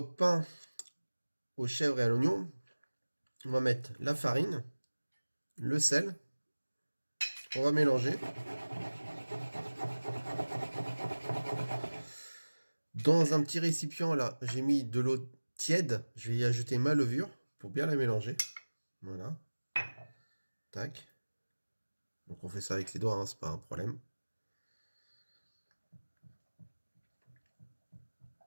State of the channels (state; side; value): inverted; both; correlation -1.00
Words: pain aux chèvres et à l'oignon, on va mettre la farine, le sel, on va mélanger. Dans un petit récipient, là, j'ai mis de l'eau tiède. Je vais y ajouter ma levure pour bien la mélanger. Voilà. Tac. Donc on fait ça avec les doigts, hein, c'est pas un problème.